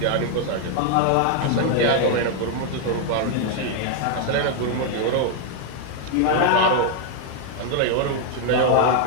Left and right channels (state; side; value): different; both; correlation 0.00